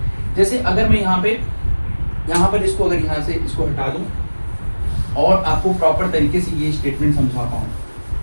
जैसे अगर मैं यहाँ पर इसको, अगर यहाँ से इसको हटा दूं और आपको प्रॉपर तरीके से ये स्टेटमेंट समझा पाऊं,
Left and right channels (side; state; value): both; inverted; correlation -1.00